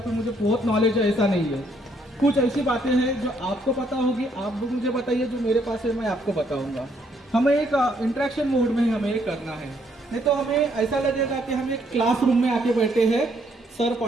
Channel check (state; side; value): normal; both; correlation 0.70